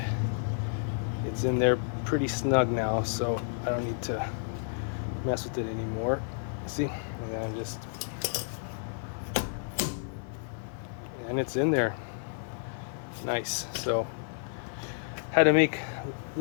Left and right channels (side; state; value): right; silent; 57 dB below the other